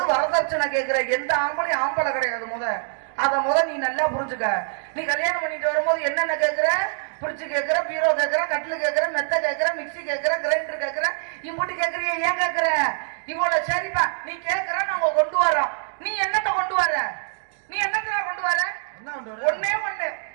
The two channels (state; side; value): silent; left; digital silence